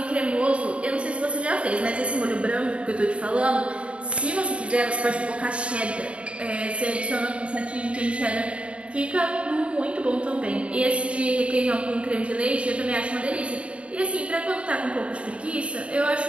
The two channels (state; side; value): late; left; 0.060 ms